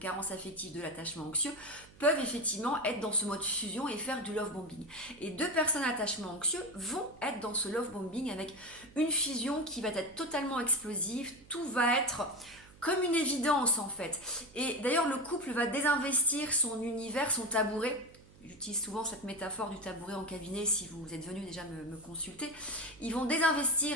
affectives, de l'attachement anxieux, peuvent effectivement être dans ce mode fusion et faire du love bombing. Et deux personnes à attachement anxieux vont être dans ce love bombing avec une fusion qui va être totalement explosive, tout va être comme une évidence en fait. Et d'ailleurs le couple va désinvestir son univers, son tabouret. J'utilise souvent cette métaphore du tabouret en cabinet si vous êtes venu déjà me consulter. Ils vont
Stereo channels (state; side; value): noise; right; hum, 23 dB below the sound